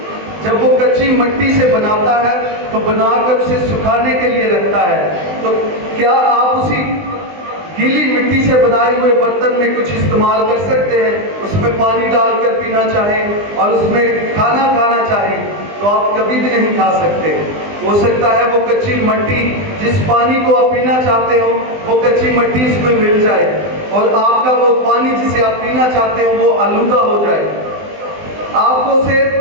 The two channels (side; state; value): left; late; 20 ms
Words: جب وہ کچی مٹی سے بناتا ہے تو بنا کر اسے سکھانے کے لیے رکھتا ہے، تو کیا آپ اسی گیلی مٹی سے بنائے ہوئے برتن میں کچھ استعمال کر سکتے ہیں؟ اس میں پانی ڈال کر پینا چاہیں اور اس میں کھانا کھانا چاہیں تو آپ کبھی بھی نہیں کھا سکتے۔ ہو سکتا ہے وہ کچی مٹی جس پانی کو آپ پینا چاہتے ہو وہ کچی مٹی اس میں مل جائے اور آپ کا وہ پانی جسے آپ پینا چاہتے ہو وہ آلودہ ہو جائے۔ آپ کو اسے